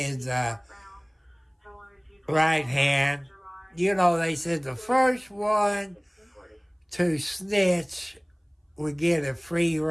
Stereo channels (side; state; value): both; identical; correlation 1.00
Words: right hand. You know, they said the first one to snitch would get a free